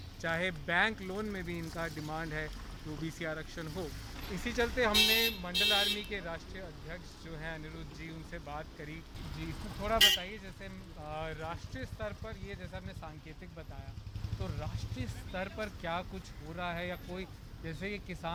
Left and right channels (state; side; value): identical; both; correlation 1.00